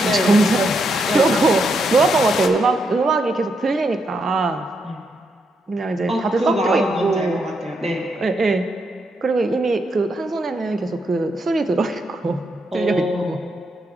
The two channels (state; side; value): normal; both; correlation 0.80